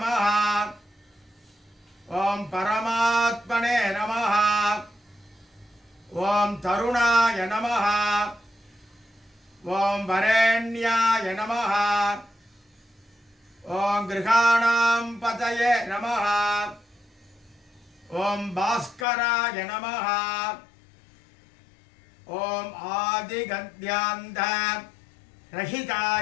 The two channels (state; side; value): drops out; right; at 19.1 s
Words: ஓம் பரமாத்மனே நமஹ. ஓம் தருணாய நமஹ. ஓம் வரேண்யாய நமஹ. ஓம் கிருஹாணாம் பதயே நமஹ. ஓம் பாஸ்கராய நமஹ. ஓம் ஆதிகத்யாந்த